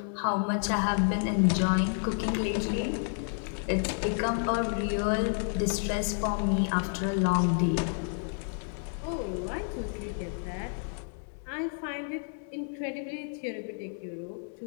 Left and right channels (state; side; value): silent; right; 58 dB below the other